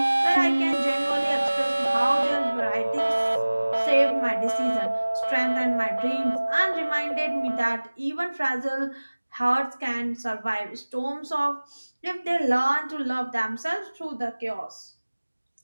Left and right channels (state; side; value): inverted; both; correlation -1.00